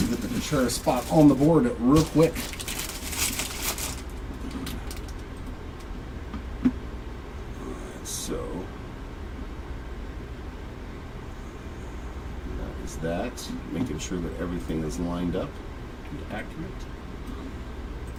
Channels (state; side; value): identical; both; correlation 1.00